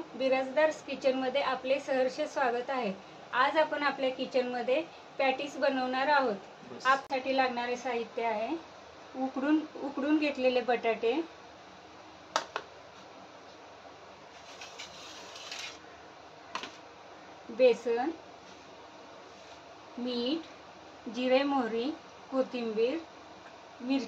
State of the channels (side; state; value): both; identical; correlation 1.00